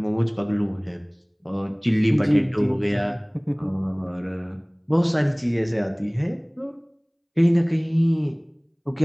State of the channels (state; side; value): identical; both; correlation 1.00